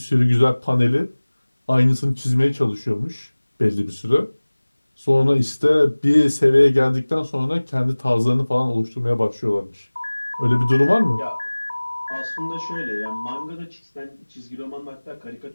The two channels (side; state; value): both; inverted; correlation -1.00